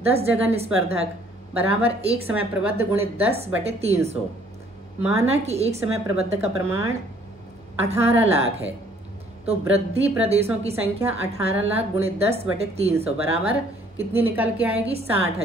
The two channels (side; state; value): both; normal; correlation 0.60